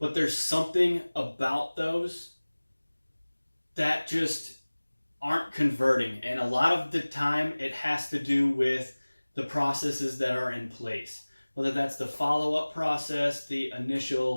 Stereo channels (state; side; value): inverted; both; correlation -1.00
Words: there's something about those that just aren't converting. And a lot of the time it has to do with the processes that are in place, whether that's the follow-up process, the